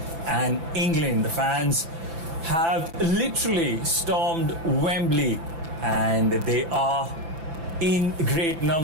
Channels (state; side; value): late; left; 6.0 ms